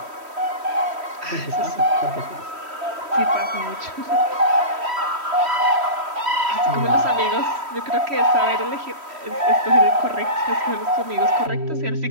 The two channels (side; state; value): left; late; 3.1 ms